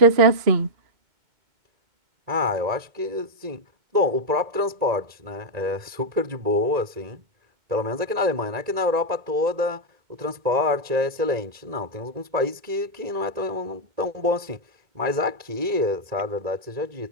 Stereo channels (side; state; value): left; late; 1.9 ms